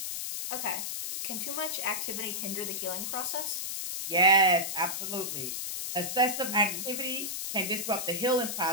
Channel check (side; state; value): left; noise; hiss, 4 dB below the sound